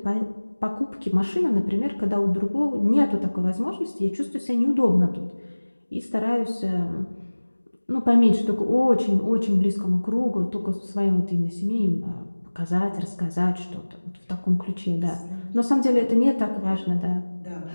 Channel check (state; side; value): inverted; both; correlation -1.00